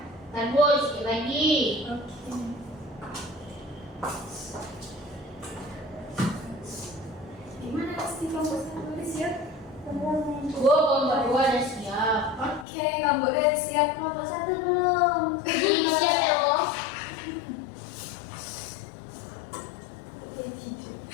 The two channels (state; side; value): drops out; right; at 12.7 s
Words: Bentar Bu, sedikit lagi. Oke. Gimana sih kamu tulis ya? Bu, kelompok 2 udah siap. Oke, kamu udah siap kelompok 1 belum? Ini siap ya Bu?